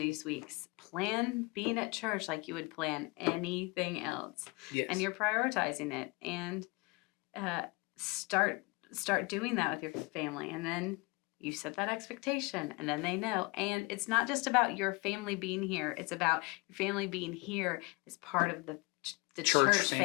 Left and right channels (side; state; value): right; quieter; 26.9 dB